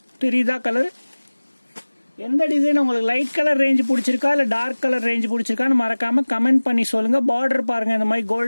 தெரியுதா கலர்? எந்த டிசைன் உங்களுக்கு லைட் கலர் ரேஞ்ச் பிடிச்சிருக்கா இல்லை டார்க் கலர் ரேஞ்ச் பிடிச்சிருக்கான்னு மறக்காம கமெண்ட் பண்ணி சொல்லுங்க. பார்டர் பாருங்க, இந்த மாதிரி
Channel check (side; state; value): both; inverted; correlation -1.00